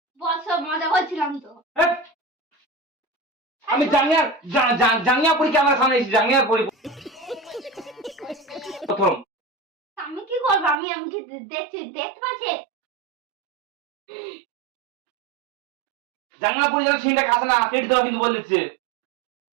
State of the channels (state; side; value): drops out; left; at 10.8 s